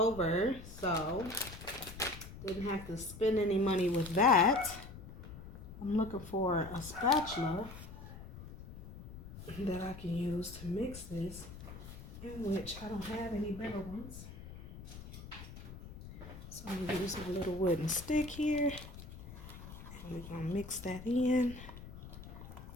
so didn't have to spend any money with that. I'm looking for a spatula that I can use to mix this, in which I don't have any better ones. So I'm gonna use my little wooden stick here, and we're gonna mix that in.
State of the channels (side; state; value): left; noise; rumble, 13 dB below the sound